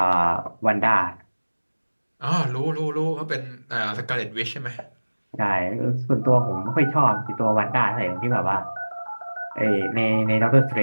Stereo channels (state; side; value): inverted; both; correlation -1.00